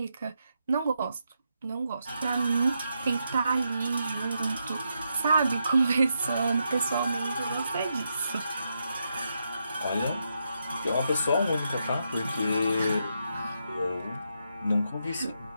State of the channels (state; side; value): inverted; both; correlation -0.82